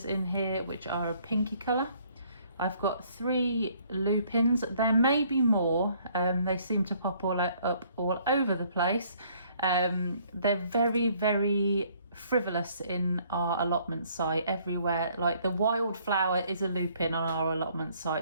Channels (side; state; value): both; inverted; correlation -0.63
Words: in here, which are a pinky colour. I've got 3 lupins. There may be more. They seem to pop up all over the place. They're very, very frivolous in our allotment site everywhere. Like the wildflower is a lupin on our allotment